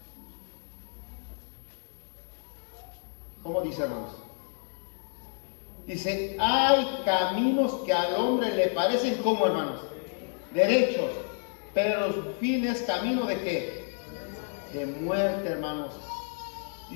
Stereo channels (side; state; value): right; silent; 58 dB below the other